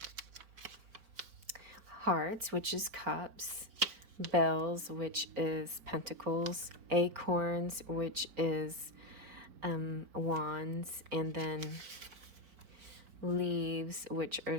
hearts, which is cups, bells, which is pentacles, acorns, which is wands, and then leaves, which are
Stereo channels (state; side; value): late; left; 4.8 ms